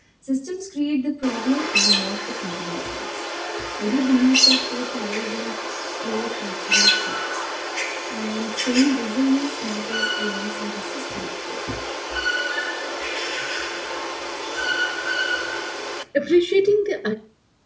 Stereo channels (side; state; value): both; identical; correlation 1.00